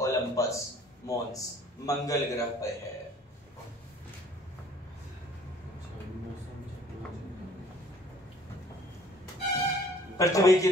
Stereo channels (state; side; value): normal; both; correlation 0.55